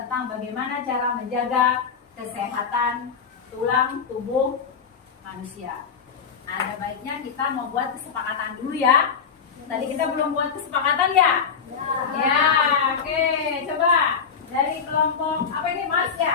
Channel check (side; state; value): right; quieter; 6.3 dB